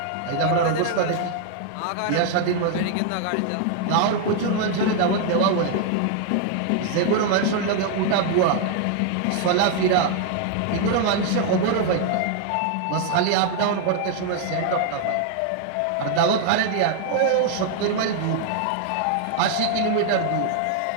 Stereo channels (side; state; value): both; different; correlation 0.00